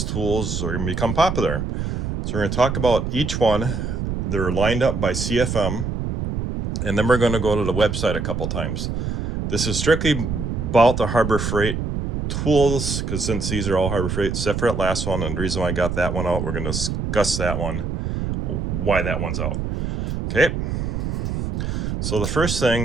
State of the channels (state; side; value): noise; right; rumble, 2 dB below the sound